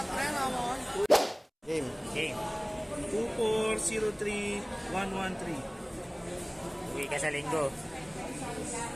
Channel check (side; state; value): both; identical; correlation 1.00